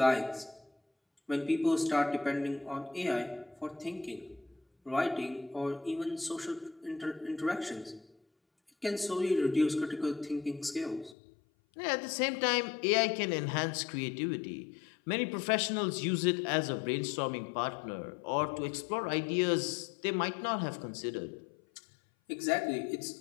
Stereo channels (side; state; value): right; drops out; at 11.2 s